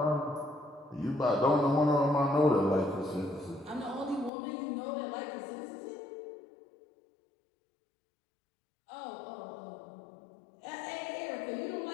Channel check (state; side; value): drops out; right; at 4.3 s